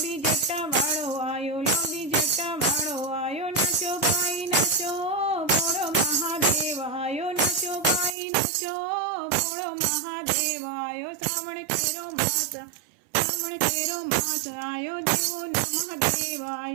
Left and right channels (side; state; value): left; drops out; at 8.1 s